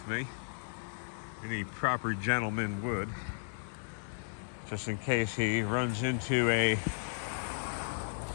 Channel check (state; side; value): silent; right; 55 dB below the other